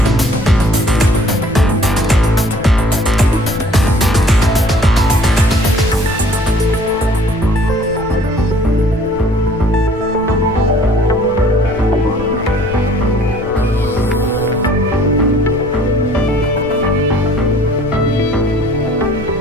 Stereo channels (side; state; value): left; noise; rumble, 13 dB below the sound